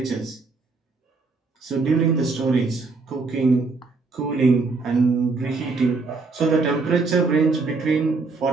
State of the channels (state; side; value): quieter; left; 4.0 dB